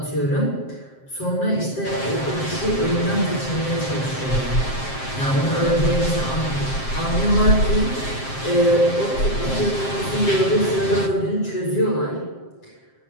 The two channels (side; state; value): right; late; 7.6 ms